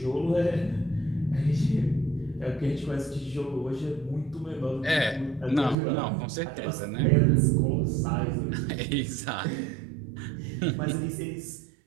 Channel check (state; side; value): drops out; left; at 5.8 s